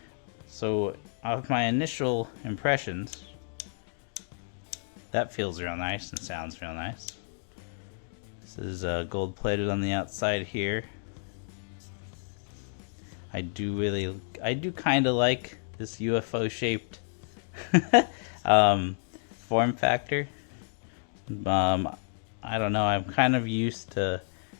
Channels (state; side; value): silent; right; digital silence